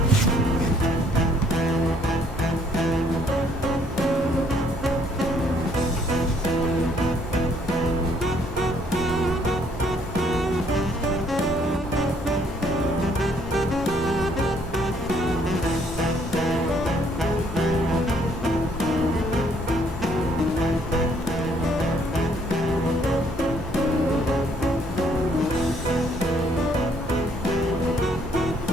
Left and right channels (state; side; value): normal; both; correlation 0.65